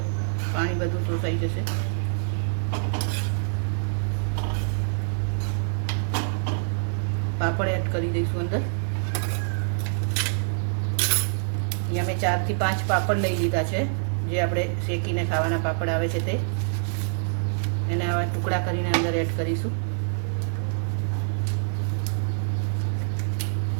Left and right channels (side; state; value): left; silent; digital silence